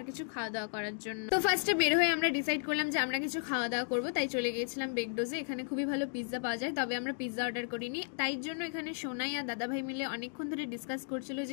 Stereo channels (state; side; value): silent; right; digital silence